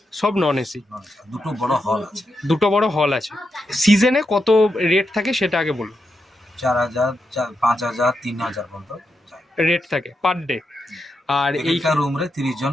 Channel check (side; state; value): both; normal; correlation 0.85